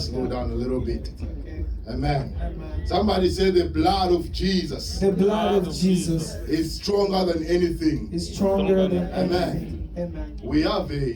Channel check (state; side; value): identical; both; correlation 1.00